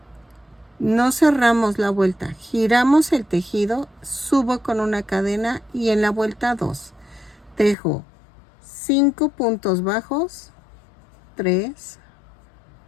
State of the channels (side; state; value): right; drops out; at 7.8 s